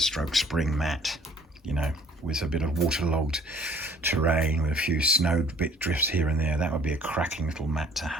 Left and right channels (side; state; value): both; normal; correlation 0.56